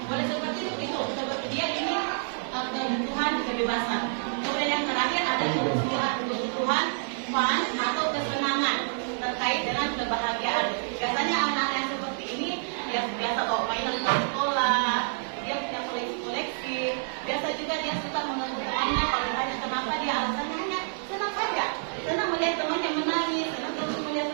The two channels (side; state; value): left; silent; digital silence